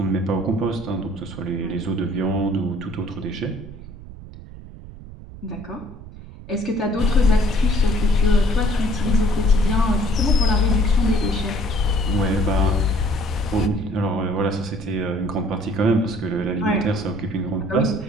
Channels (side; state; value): right; noise; rumble, 15 dB below the sound